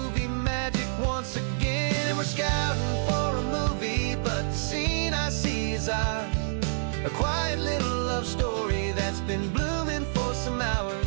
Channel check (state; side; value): silent; left; 60 dB below the other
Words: magic once again. And we're scouting for a movie, but the scene I see is ours. A quiet little love story that's been blooming for some hours.